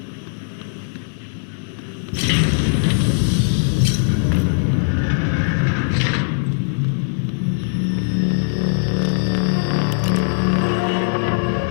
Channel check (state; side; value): silent; right; digital silence